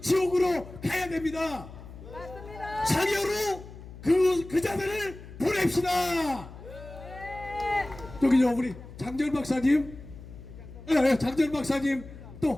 가야 됩니다. 맞습니다. 상여로 그 자들을 보냅시다. 여기 우리 장전 박사님, 장전 박사님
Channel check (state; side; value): noise; left; hum, 15 dB below the sound